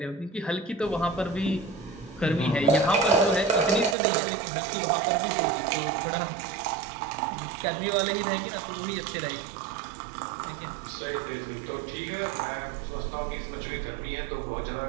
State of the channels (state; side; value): drops out; left; at 4.0 s